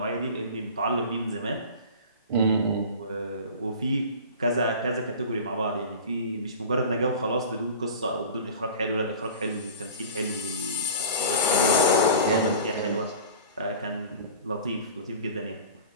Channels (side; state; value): both; inverted; correlation -0.37